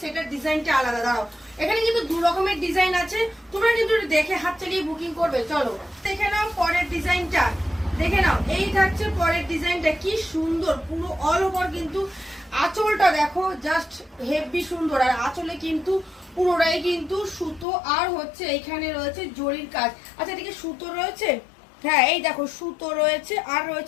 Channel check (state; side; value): drops out; right; at 17.7 s